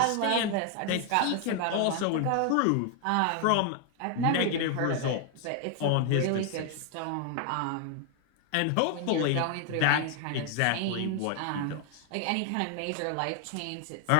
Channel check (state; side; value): different; both; correlation 0.00